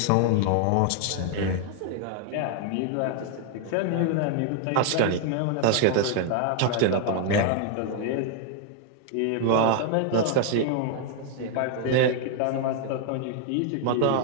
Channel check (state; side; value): different; both; correlation 0.00